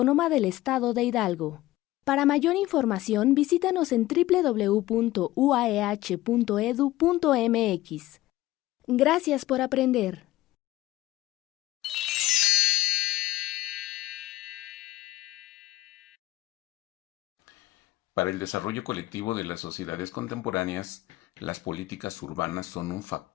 del Estado de Hidalgo. Para mayor información, visítanos en www.uaeh.edu.mx. Gracias por aprender. Para el desarrollo colectivo de las sociedades contemporáneas, las políticas urbanas son un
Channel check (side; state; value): right; quieter; 16.5 dB